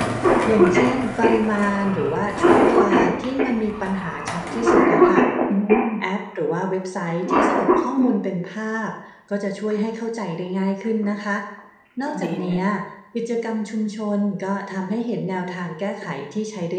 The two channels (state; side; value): identical; both; correlation 1.00